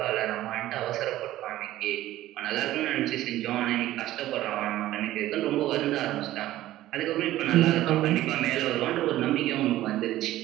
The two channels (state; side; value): quieter; left; 14.8 dB